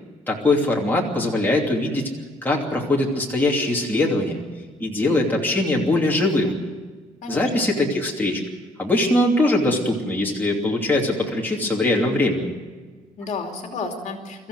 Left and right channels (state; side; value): normal; both; correlation 0.63